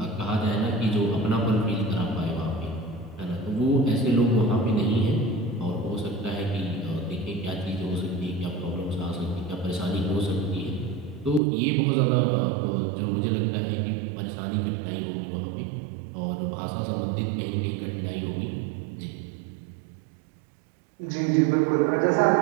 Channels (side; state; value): left; drops out; at 11.4 s